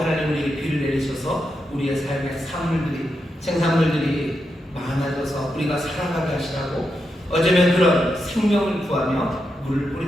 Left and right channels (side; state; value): both; normal; correlation 0.85